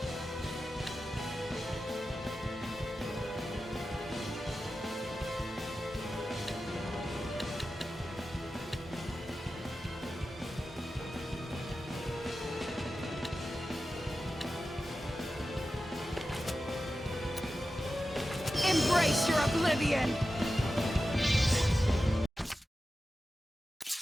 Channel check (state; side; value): normal; both; correlation 0.93